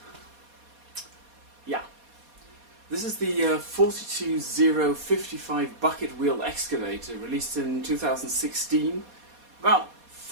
Yeah, this is the 42055 bucket wheel excavator, released in 2016. About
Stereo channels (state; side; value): late; left; 4.2 ms